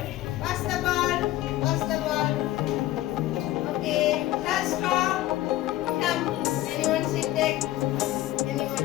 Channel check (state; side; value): quieter; right; 15.5 dB